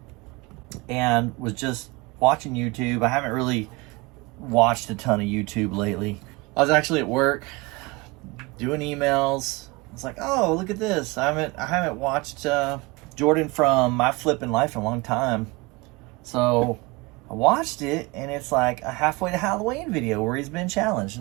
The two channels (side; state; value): left; quieter; 24.6 dB